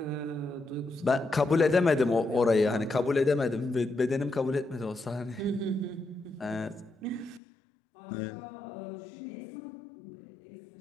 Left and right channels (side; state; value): right; drops out; at 7.4 s